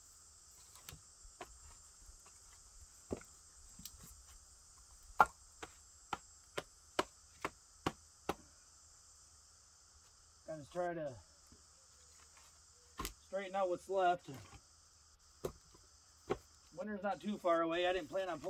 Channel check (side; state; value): both; identical; correlation 1.00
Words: Gonna try to straighten out what's left. Winter's not too far away. I didn't plan on